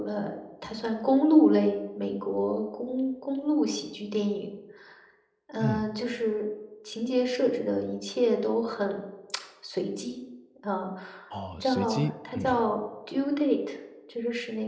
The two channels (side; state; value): both; identical; correlation 1.00